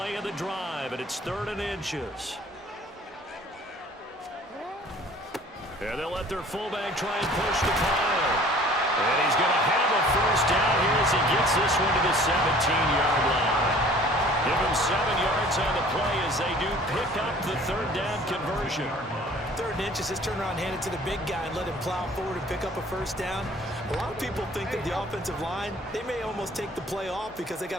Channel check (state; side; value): normal; both; correlation 0.50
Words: of the drive, and it's 3rd and inches. And they'll let their fullback try and push the pile. And he's going to have a first down here as he gets this one to the 17-yard line. Give him 7 yards on the play as they do pick up the 3rd down conversion. 3rd and inches, just turn around, hand it to the big guy, and let him plow forward and pick up a first down. A lot of people think that the offensive line, they may almost take the play off because they